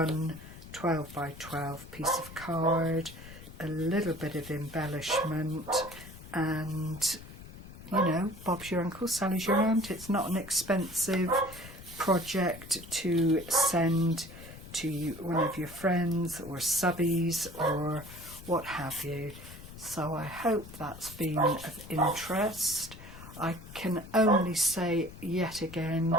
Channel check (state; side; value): noise; left; rumble, 15 dB below the sound